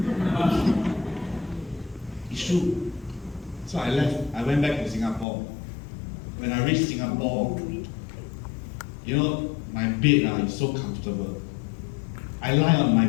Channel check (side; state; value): right; drops out; at 5.2 s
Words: It's true. So I left. I went back to Singapore. When I reached Singapore, you know, my bed is so comfortable. I lie on my